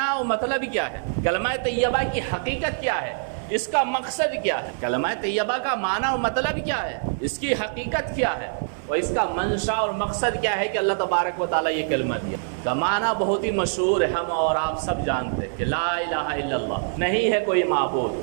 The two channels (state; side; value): silent; left; 60 dB below the other